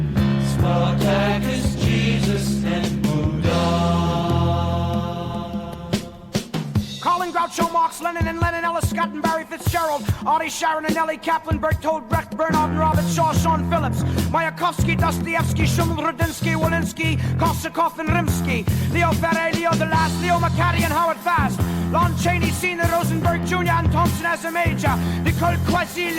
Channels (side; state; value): both; identical; correlation 1.00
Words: Groucho Marx, Lenin and Lenin, Ellis, Scott and Barry Fitz, Fitzgerald, Artie Sharon and Ellie Kaplan, Bertold Brecht, Bernard and Robert Shaw, Sean Phillips, Mayakovsky, Dostoevsky, Schumann, Rudinsky, Walensky, Korsakov and Rimsky, Leo Ferre, Leo DeLast, Leo McCarty and Howard Fast, Lon Chaney, Senior, Rosenberg Jr. and Thompson as a major, Nicole Quasi,